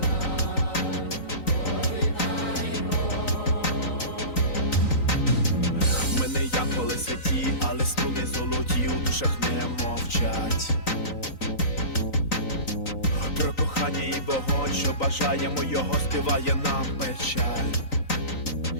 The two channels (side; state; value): right; late; 3.9 ms